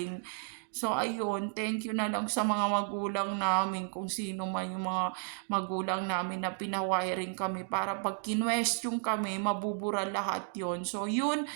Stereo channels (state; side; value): silent; left; 56 dB below the other